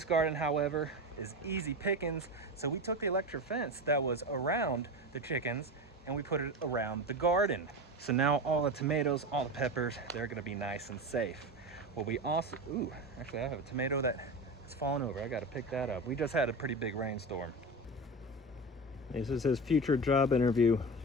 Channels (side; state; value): both; normal; correlation 0.24